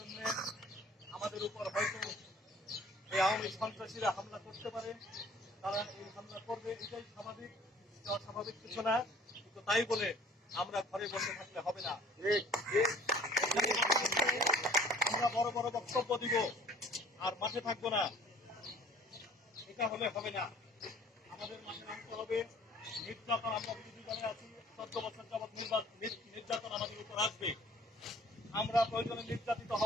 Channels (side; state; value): both; normal; correlation 0.52